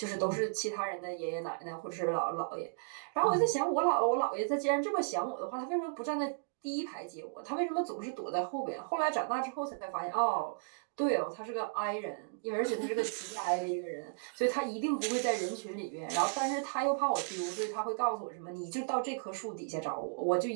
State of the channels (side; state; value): left; silent; digital silence